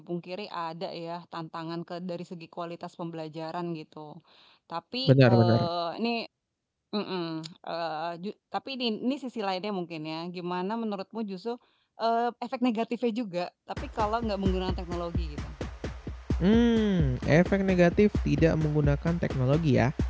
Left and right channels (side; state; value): both; identical; correlation 1.00